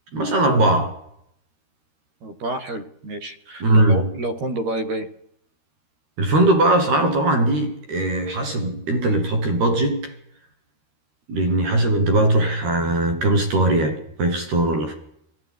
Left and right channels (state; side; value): late; left; 13 ms